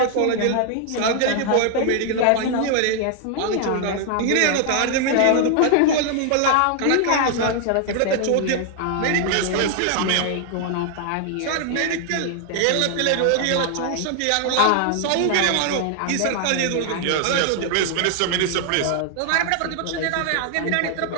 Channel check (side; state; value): both; different; correlation 0.00